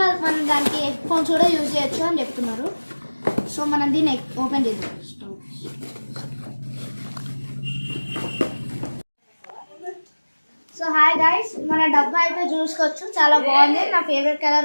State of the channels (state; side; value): inverted; both; correlation -1.00